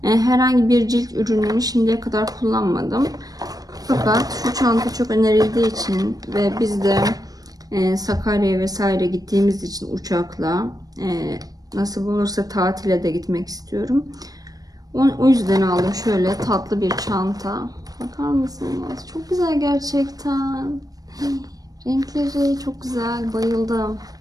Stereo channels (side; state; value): left; late; 0.18 ms